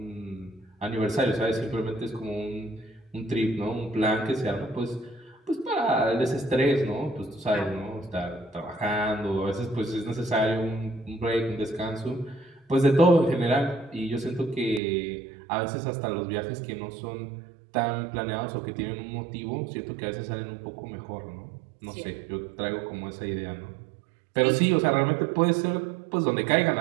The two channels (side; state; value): left; drops out; at 14.8 s